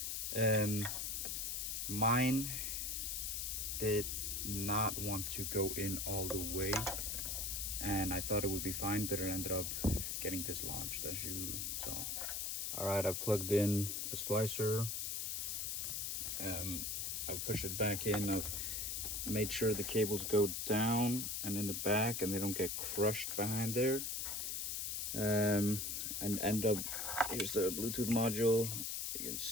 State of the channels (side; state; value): left; noise; hiss, 2 dB below the sound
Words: Mine did not want to go in all the way, and I thought it would be fine, but it ended up getting dislodged, as you saw. All right, I plugged in the splicer. I've pushed it back in. I've made sure the cables go down and in the back and they don't get crushed behind there. And end up, here's the Bluetooth module. You can